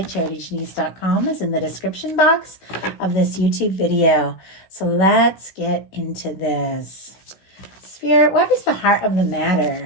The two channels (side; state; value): right; late; 16 ms